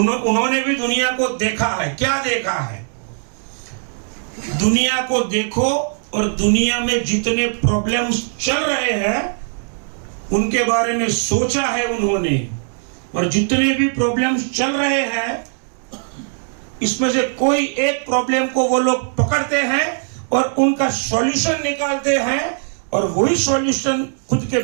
भी दुनिया को देखा है। क्या देखा है? दुनिया को देखो और दुनिया में जितने प्रॉब्लम्स चल रहे हैं उनके बारे में सोचा है उन्होंने। और जितने भी प्रॉब्लम्स चल रहे हैं, इसमें से कोई एक प्रॉब्लम को वो लोग पकड़ते हैं और उनका सॉल्यूशन निकालते हैं और वही सॉल्यूशन खुद के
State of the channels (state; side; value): silent; left; 59 dB below the other